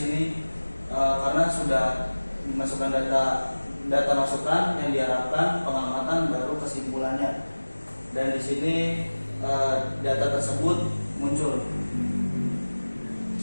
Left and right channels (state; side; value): inverted; both; correlation -1.00